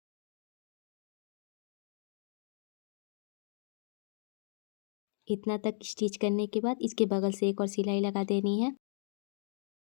इतना तक स्टिच करने के बाद इसके बगल से एक और सिलाई लगा देनी है।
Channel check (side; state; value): right; silent; digital silence